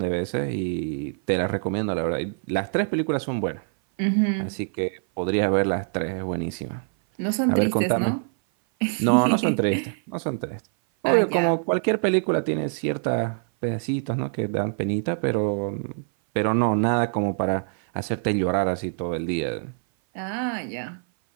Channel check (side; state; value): left; silent; 58 dB below the other